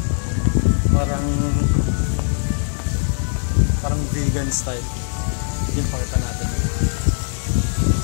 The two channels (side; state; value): right; silent; digital silence